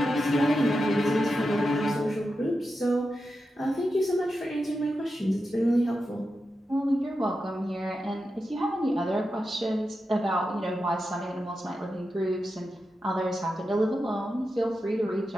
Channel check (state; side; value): normal; both; correlation 0.89